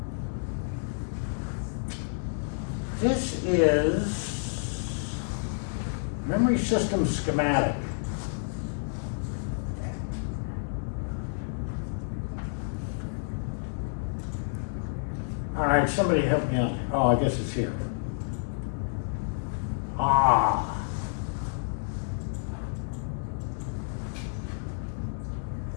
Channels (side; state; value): right; silent; digital silence